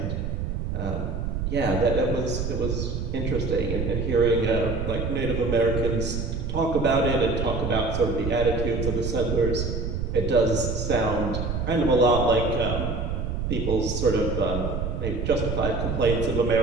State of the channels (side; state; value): right; noise; rumble, 2 dB below the sound